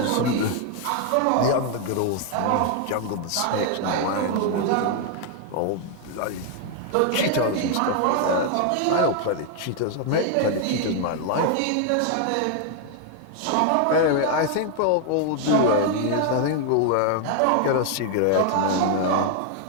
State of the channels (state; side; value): different; both; correlation 0.00